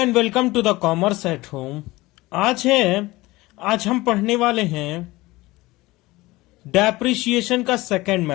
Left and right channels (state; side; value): quieter; right; 20.0 dB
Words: welcome to the commerce at home. आज हम पढ़ने वाले हैं डेप्रिसिएशन का सेकंड